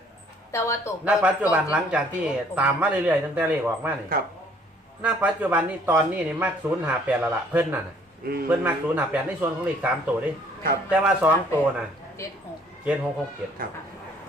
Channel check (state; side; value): normal; both; correlation 0.59